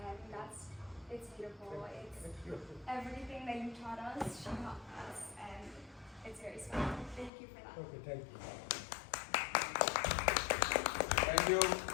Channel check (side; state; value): right; drops out; at 7.3 s